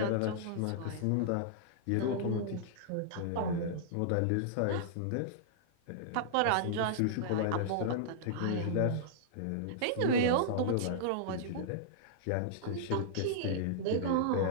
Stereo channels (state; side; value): different; both; correlation -0.01